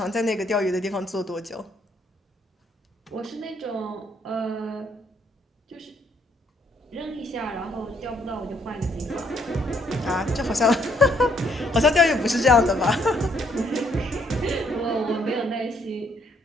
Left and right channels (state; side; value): normal; both; correlation 0.69